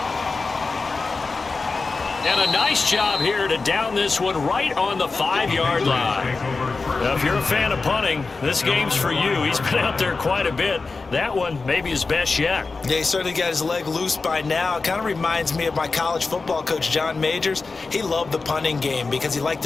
And a nice job here to down this one right on the 5-yard line. Now, if you're a fan of punting, this game's for you. He's been out there quite a bit. That one maybe his best yet. Yeah, he certainly got his leg loose by now. It kind of reminds me of my college football coach, John Majors. He loved the punting game because he liked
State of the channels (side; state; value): right; quieter; 4.0 dB